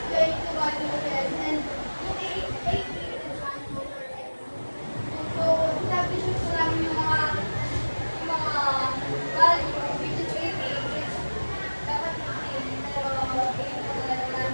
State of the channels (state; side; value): inverted; both; correlation -1.00